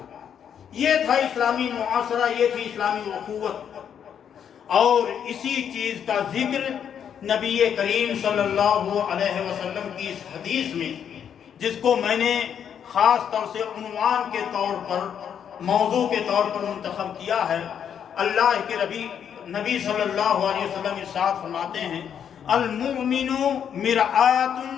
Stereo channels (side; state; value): right; quieter; 8.4 dB